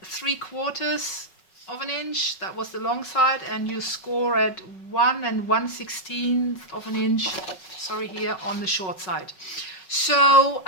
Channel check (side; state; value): right; late; 5.4 ms